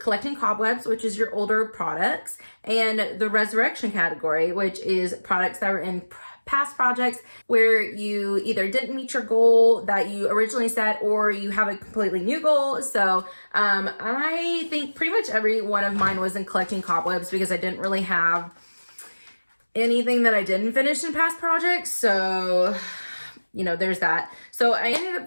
collecting cobwebs, which is your older products, and the resurrection category, which is products that were in past projects where you either didn't meet your goal that you originally set, or you have a completely new goal. So I think pretty much every one of mine was in collecting cobwebs, because I didn't really have anything that I didn't finish in past projects. So you know, there's that. So I ended up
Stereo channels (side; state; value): both; inverted; correlation -1.00